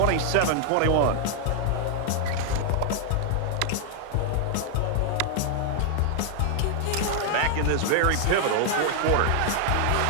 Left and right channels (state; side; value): different; both; correlation 0.00